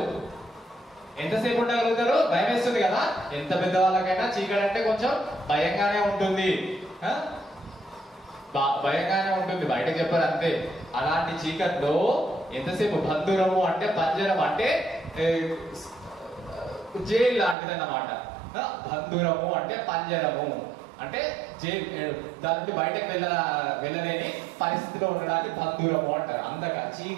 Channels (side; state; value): left; drops out; at 17.6 s